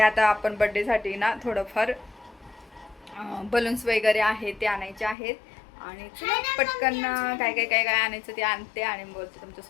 आता आपण बड्डेसाठी ना थोडंफार बलून्स वगैरे आहेत ते आणायचे आहेत. आणि पटकन काय आणायचं ते आणते आणि बोलते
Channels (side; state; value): right; drops out; at 5.2 s